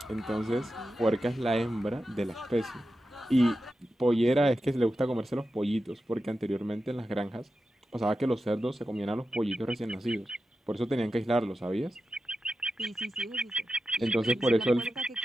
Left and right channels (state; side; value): normal; both; correlation 0.91